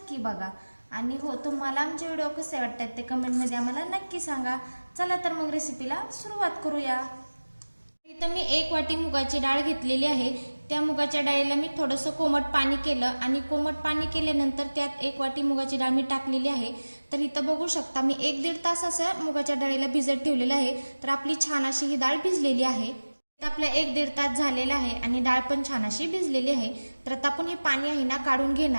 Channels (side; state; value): both; inverted; correlation -1.00